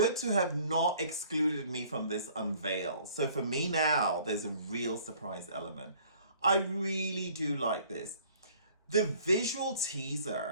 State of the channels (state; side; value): inverted; both; correlation -0.55